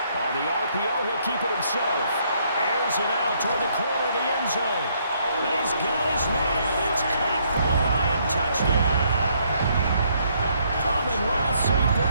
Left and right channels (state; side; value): inverted; both; correlation -0.70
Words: On the RPO, he'll keep it himself. Airs it out toward the corner of the end zone. And he's got his man. It's caught for a Lion touchdown. Amon-Ra St.